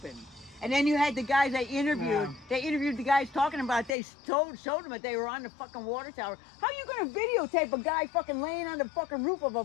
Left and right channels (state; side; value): drops out; right; at 4.0 s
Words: And then you had the guys they interviewed. Yeah. They interviewed the guys talking about it. They showed them that they were on the fucking water tower. How are you gonna videotape a guy fucking laying on the fucking roof of a